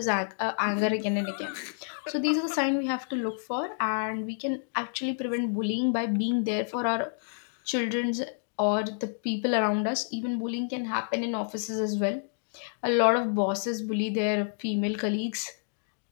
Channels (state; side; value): silent; right; digital silence